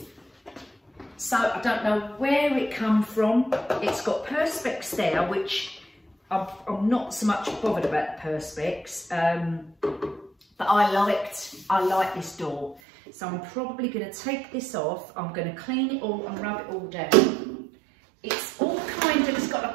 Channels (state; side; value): drops out; left; at 12.8 s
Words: So I don't know where it come from. It's got perspex there, which I'm not so much bothered about the perspex, but I like this door. So I'm probably going to take this off. I'm going to clean it all and rub it all down. It's all kind of, it's got